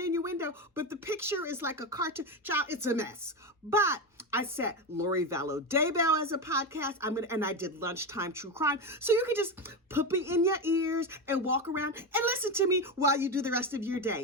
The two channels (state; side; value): normal; both; correlation 0.16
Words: innuendo, but the picture is like a cartoon. Child, it's a mess. But I set Lori Vallow Daybell as a podcast. And I did lunchtime true crime. So you can just put me in your ears and walk around and listen to me while you do the rest of your